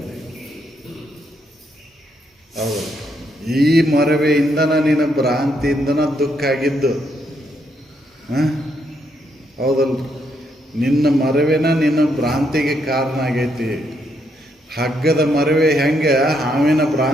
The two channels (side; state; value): both; normal; correlation 0.76